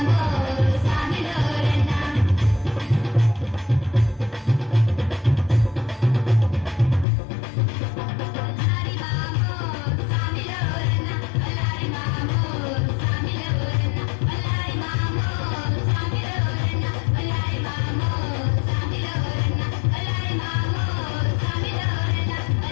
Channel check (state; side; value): drops out; right; at 7.1 s